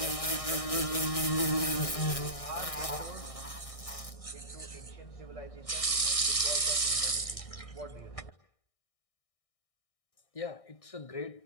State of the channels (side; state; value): right; late; 1.6 ms